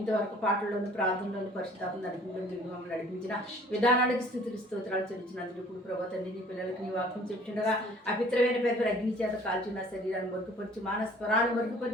పాటల్లోను ప్రార్థనలోను పరిశుద్ధాత్మ మమ్మల్ని నడిపించిన విధానానికి స్థుతులు స్తోత్రాలు చెల్లించినందుకు ఇప్పుడు ప్రభా తండ్రి నీ పిల్లలకి నీ వాక్యం చెప్తుండగా అపిత్రమైన పెద్ద అగ్ని చేత కాల్చిన శరీరాన్ని మరుగుపరచు, మానస్వరాన్ని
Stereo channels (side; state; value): both; normal; correlation 0.53